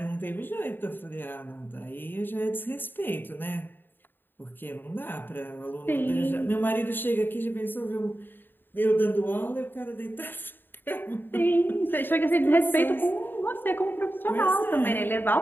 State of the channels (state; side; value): late; right; 0.095 ms